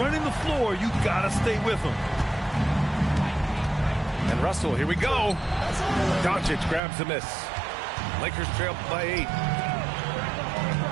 the floor, you gotta stay with him. And Russell, here we go. Doncic grabs the miss. Lakers trail by 8.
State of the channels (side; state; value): left; drops out; at 6.8 s